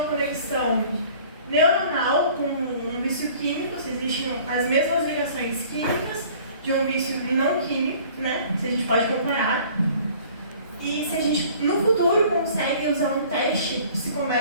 conexão neuronal com um vício químico, se existem as mesmas ligações químicas de um vício não químico, né? Se a gente pode comparar. E se a gente, no futuro, consegue usar um teste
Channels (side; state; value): both; inverted; correlation -0.51